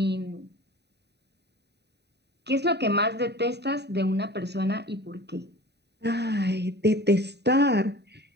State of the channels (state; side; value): late; left; 0.49 ms